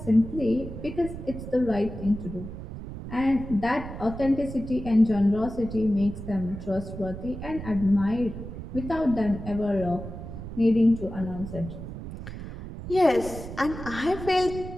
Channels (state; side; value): noise; right; rumble, 10 dB below the sound